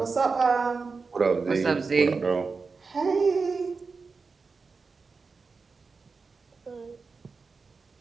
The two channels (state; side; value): quieter; left; 4.6 dB